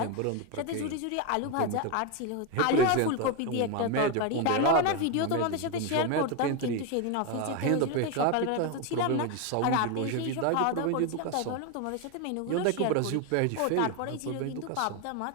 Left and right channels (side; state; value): both; different; correlation 0.02